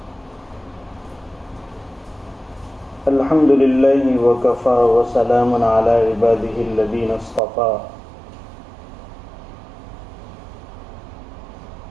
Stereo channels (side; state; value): left; drops out; at 7.4 s